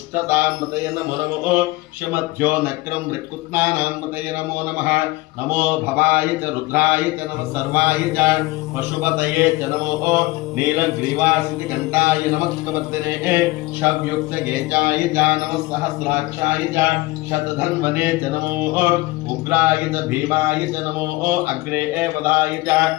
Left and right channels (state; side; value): quieter; right; 20.4 dB